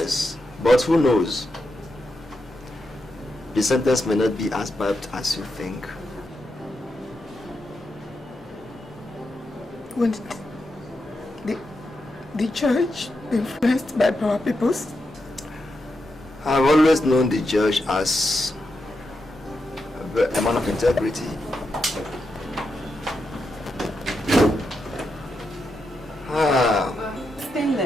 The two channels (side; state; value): both; normal; correlation 0.85